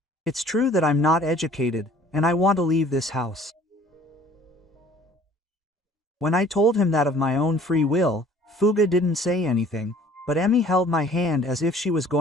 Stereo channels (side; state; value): both; normal; correlation 0.53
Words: It's true that I'm not educated, and I want to leave this house. When I told him that of my own free will, Fuga didn't say anything, but Emmy held my hand as if she was